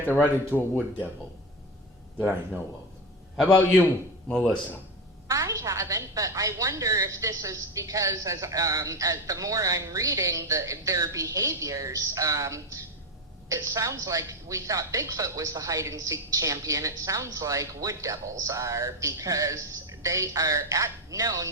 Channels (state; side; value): normal; both; correlation 0.16